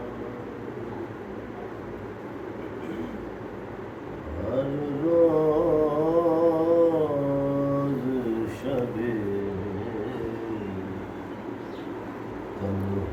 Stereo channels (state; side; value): identical; both; correlation 1.00